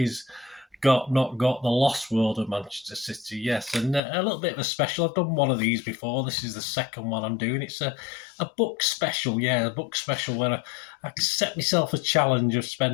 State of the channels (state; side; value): drops out; right; at 4.0 s